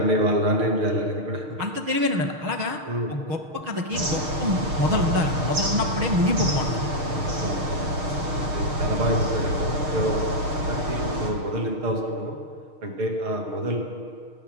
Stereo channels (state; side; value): late; left; 6.5 ms